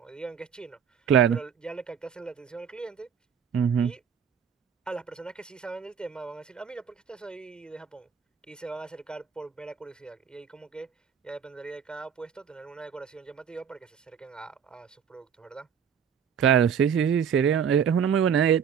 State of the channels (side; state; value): left; quieter; 7.7 dB